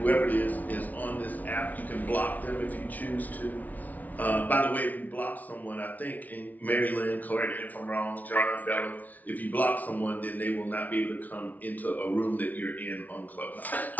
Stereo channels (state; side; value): late; right; 0.076 ms